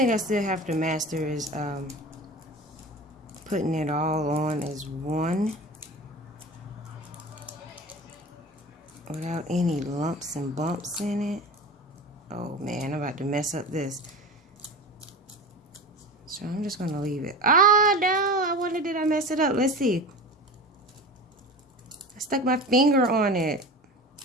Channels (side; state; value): both; normal; correlation 0.33